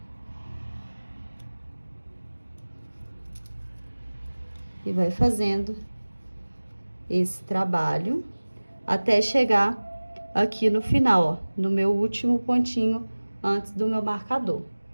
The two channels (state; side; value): inverted; both; correlation -1.00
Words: E vai fazendo esse trabalho até chegar aqui no final, ó, no meu último pontinho antes do meu marcador.